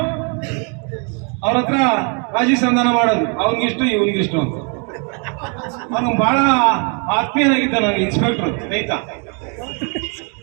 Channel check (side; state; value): left; quieter; 36.7 dB